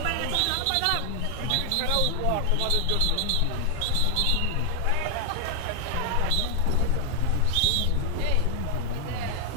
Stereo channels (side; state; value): both; different; correlation 0.00